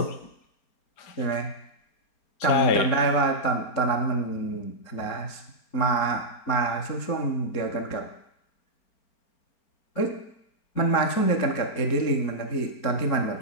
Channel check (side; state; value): right; late; 4.4 ms